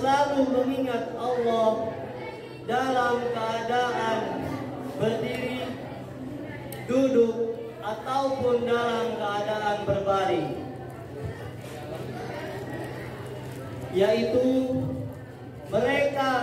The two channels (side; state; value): both; identical; correlation 1.00